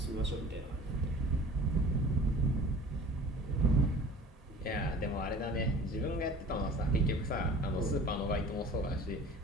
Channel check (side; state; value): both; normal; correlation 0.44